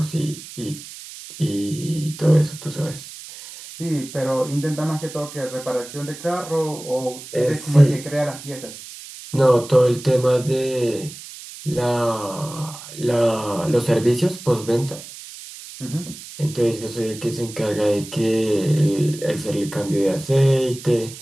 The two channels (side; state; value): right; noise; hiss, 14 dB below the sound